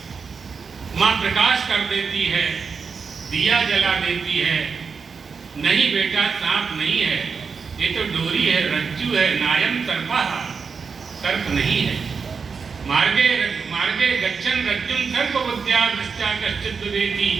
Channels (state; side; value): quieter; left; 5.5 dB